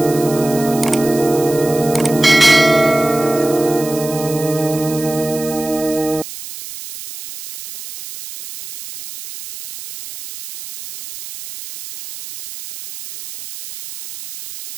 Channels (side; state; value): right; noise; hiss, 12 dB below the sound